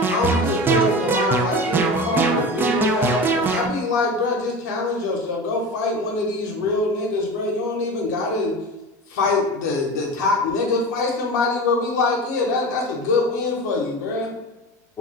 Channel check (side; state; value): both; normal; correlation 0.30